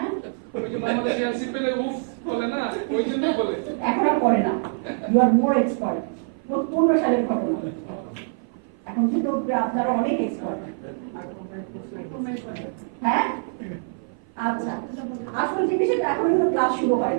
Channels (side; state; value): left; silent; 55 dB below the other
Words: ওই যে বাংলাদেশে এলসি পেলে উফ বলে না, ওই জন্যই বলে। এখন আর করে না। You R more expert. 15 সালের ঘটনা, এখন কিন্তু আপনারা অনেক এক্সপার্ট। হ্যাঁ, আচ্ছা, আসল জিনিস এখন কিন্তু ক্লাস শুরু হয়